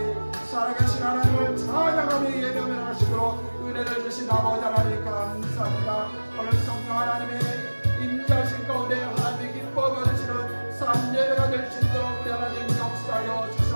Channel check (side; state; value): both; inverted; correlation -1.00